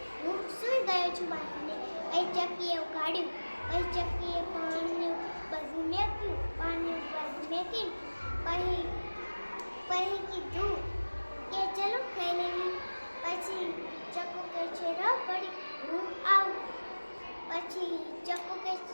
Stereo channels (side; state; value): both; inverted; correlation -1.00